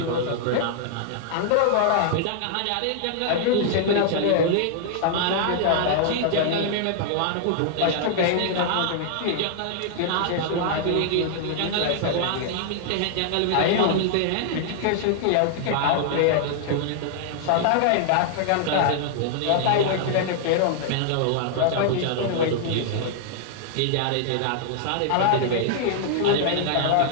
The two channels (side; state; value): both; different; correlation -0.01